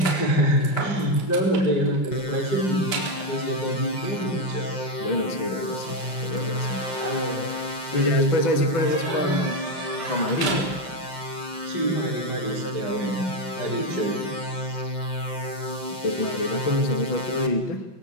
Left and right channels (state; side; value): late; right; 5.6 ms